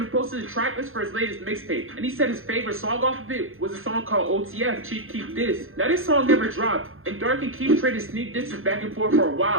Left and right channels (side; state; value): left; late; 0.60 ms